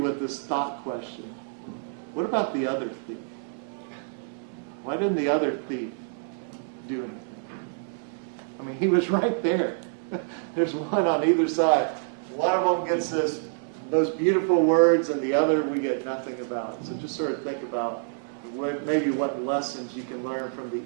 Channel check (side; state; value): left; silent; 60 dB below the other